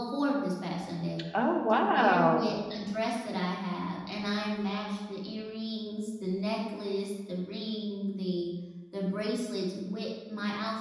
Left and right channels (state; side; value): identical; both; correlation 1.00